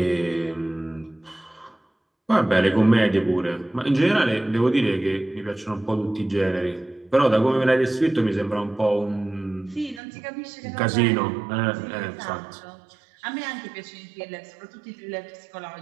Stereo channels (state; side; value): drops out; left; at 10.0 s